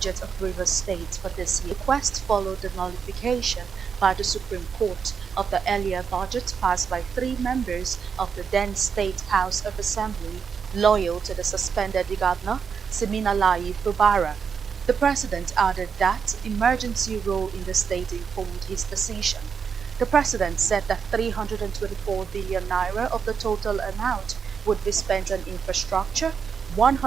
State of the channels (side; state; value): left; quieter; 6.4 dB